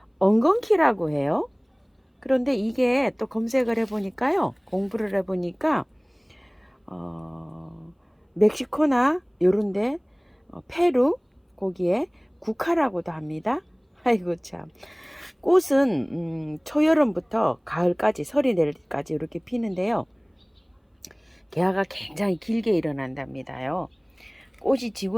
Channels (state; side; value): identical; both; correlation 1.00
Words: 엉겅키라고 해요. 그런데 이게 또 검색을 해보니까요. 공부를 해보니까 멕시코나 요런데 페루 거기에 국화라고도 합니다. 아이고 참. 꽃은 초여름부터 가을까지 설이 내릴까지 이렇게 피는데요. 개화가 굉장히 길게 일어난답니다요. 꽃이